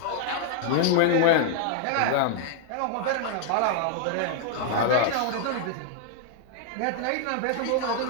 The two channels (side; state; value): both; different; correlation -0.01